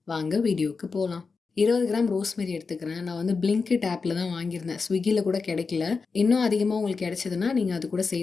வாங்க வீடியோவுக்கு போகலாம். 20 கிராம் ரோஸ்மெரி எடுத்துக்கிறேன். நான் வந்து பிளிங்கிட் ஆப்பில் தான் வாங்கியிருந்தேன். ஸ்விக்கியில் கூட கிடைக்கல. இன்னும் அதிகமாக உங்களுக்கு கிடைச்சதுன்னா நீங்கள் அது கூட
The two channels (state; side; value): quieter; right; 4.7 dB